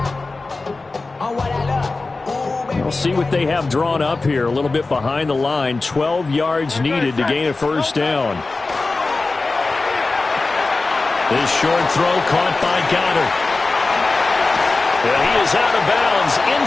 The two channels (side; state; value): right; quieter; 3.6 dB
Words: We'll see what they have drawn up here. A little bit behind the line. 12 yards needed to gain a first down. This short throw caught by Goddard. And he is out of bounds